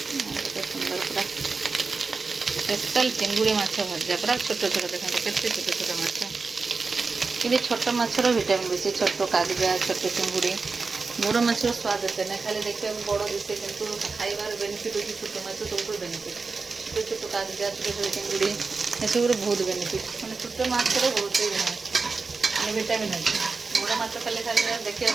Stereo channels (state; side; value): quieter; left; 4.4 dB